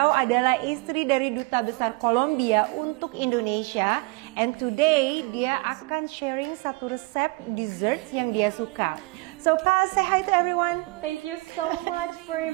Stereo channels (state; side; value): quieter; left; 25.8 dB